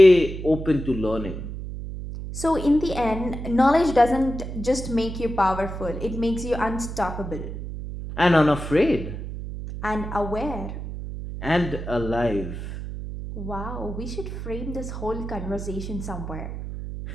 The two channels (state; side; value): noise; right; hum, 7 dB below the sound